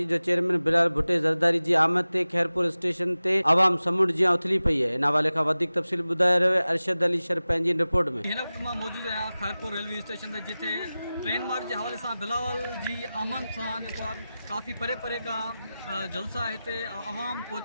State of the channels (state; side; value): inverted; both; correlation -0.96